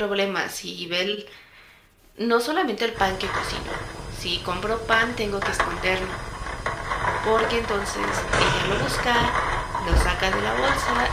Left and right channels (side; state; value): both; identical; correlation 1.00